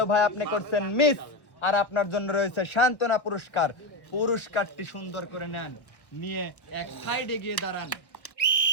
ভাই আপনি করছেন মিস। আর আপনার জন্য রয়েছে সান্ত্বনা পুরস্কার। পুরস্কারটি সুন্দর করে নেন, নিয়ে এক সাইডে গিয়ে দাঁড়ান।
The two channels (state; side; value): late; right; 1.0 ms